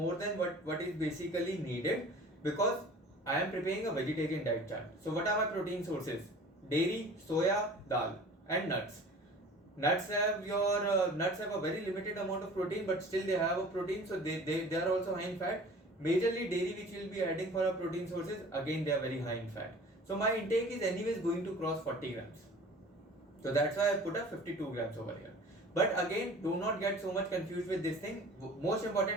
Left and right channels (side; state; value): both; normal; correlation 0.44